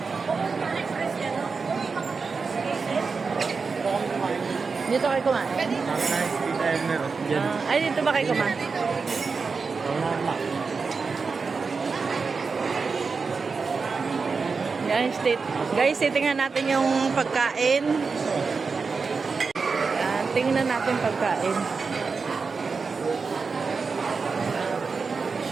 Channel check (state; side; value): quieter; left; 4.8 dB